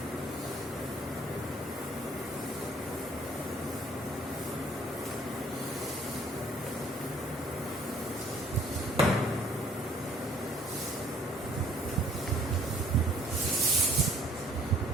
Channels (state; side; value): normal; both; correlation 0.59